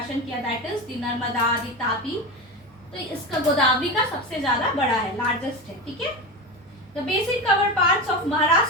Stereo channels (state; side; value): normal; both; correlation 0.22